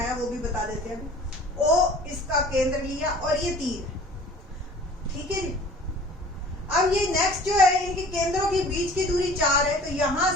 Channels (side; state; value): both; normal; correlation 0.47